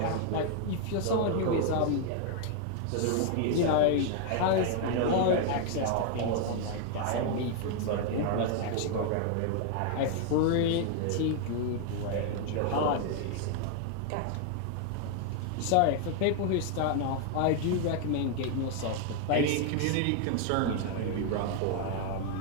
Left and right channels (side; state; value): both; different; correlation 0.00